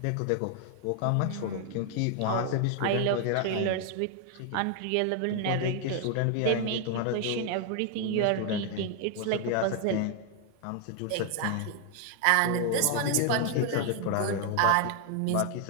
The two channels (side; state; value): both; different; correlation 0.00